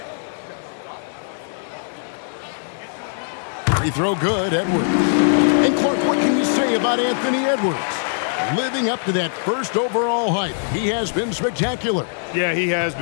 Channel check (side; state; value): right; silent; digital silence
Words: Free throw good, Edwards. And Clark, what can you say about Anthony Edwards? Living up to that first overall hype, he has been spectacular. Yeah, he has